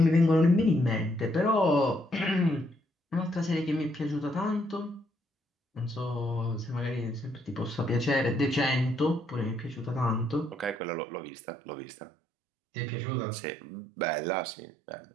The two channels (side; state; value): left; drops out; at 10.8 s